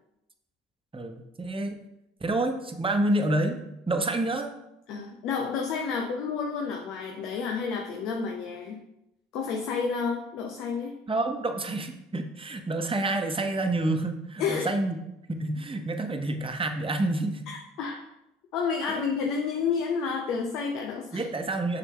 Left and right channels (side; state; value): both; normal; correlation 0.52